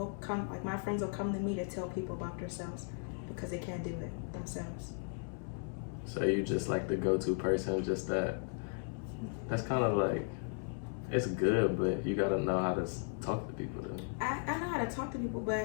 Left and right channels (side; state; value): right; silent; 54 dB below the other